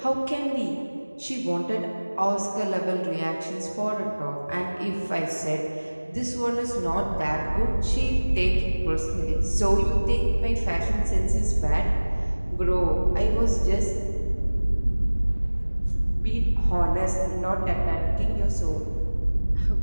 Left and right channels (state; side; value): inverted; both; correlation -1.00